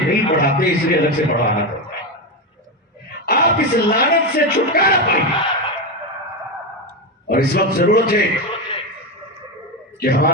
پڑھاتے اس لیے الگ سے پڑھانا پڑتا ہے. آپ اس لعنت سے چھٹکارا پائیں. اور اس وقت ضرورت ہے کہ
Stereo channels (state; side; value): normal; both; correlation 0.12